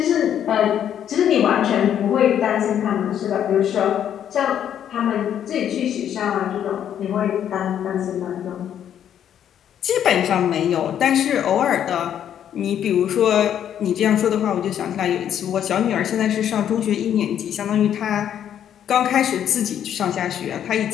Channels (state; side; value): quieter; right; 9.8 dB